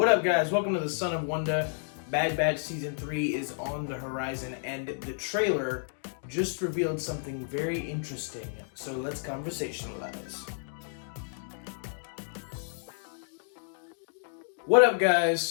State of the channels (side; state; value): right; silent; digital silence